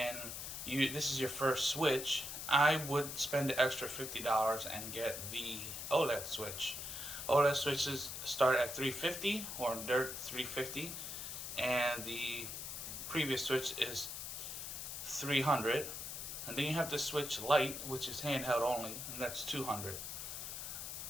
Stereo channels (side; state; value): left; noise; hiss, 6 dB below the sound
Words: this is your first Switch, I would spend the extra $50 and get the OLED Switch. OLED Switches start at $350, or they're $350, and the previous Switch is $300. And then you have the Switch Lite, which is handheld only, and that's $200.